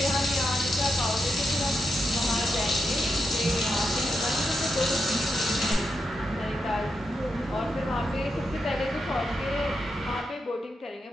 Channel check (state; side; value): normal; both; correlation 0.85